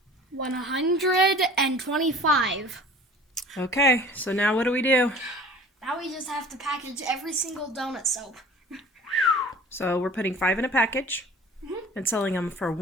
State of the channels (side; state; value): both; normal; correlation 0.45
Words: 125. Okay, so now what do we do? Now we just have to package every single donut soap. So we're putting 5 in a package and selling them for